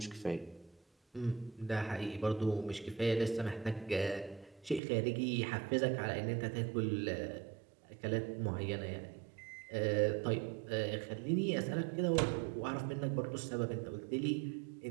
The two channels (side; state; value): left; drops out; at 4.8 s